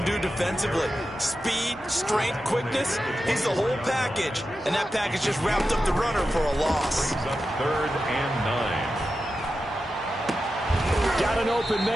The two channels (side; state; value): both; normal; correlation 0.91